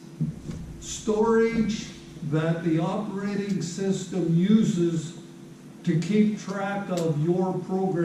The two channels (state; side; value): identical; both; correlation 1.00